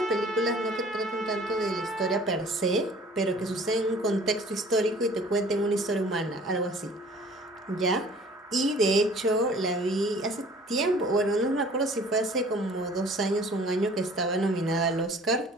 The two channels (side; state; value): both; normal; correlation 0.50